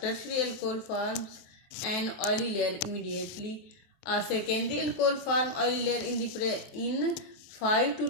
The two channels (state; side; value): late; right; 23 ms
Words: tertiary alcohol forms an oily layer immediately. A secondary alcohol forms oily layer in 5 to